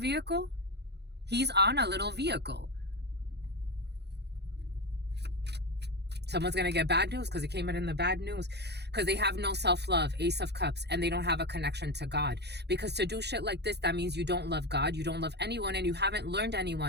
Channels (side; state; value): left; late; 0.49 ms